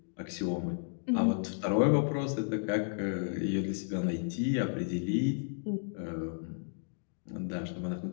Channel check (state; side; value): silent; right; digital silence